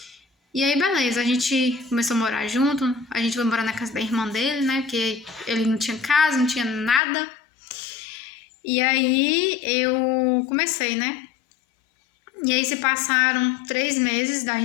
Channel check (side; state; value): right; drops out; at 7.0 s